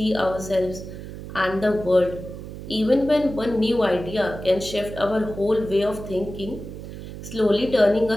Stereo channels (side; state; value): right; noise; hum, 11 dB below the sound